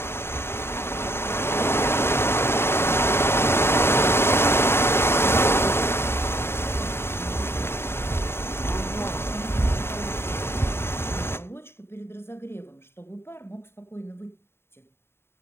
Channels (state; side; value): late; right; 0.12 ms